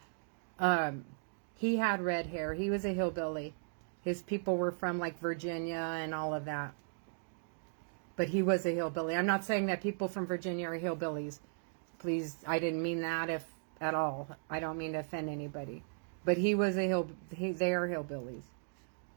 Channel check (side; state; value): left; silent; digital silence